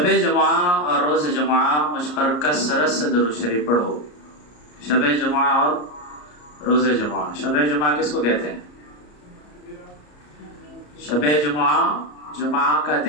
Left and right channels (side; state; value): right; late; 34 ms